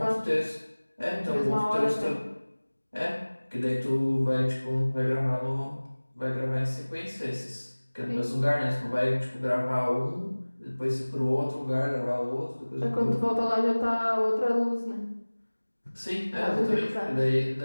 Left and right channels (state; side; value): inverted; both; correlation -1.00